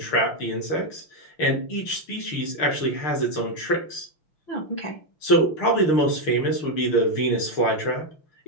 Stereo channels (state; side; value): late; right; 6.5 ms